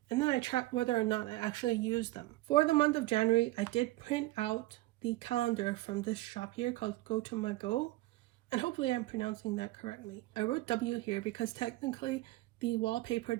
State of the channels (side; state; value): left; quieter; 18.9 dB